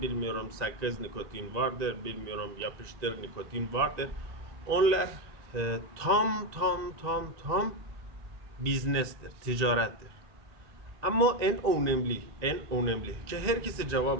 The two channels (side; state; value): left; late; 1.8 ms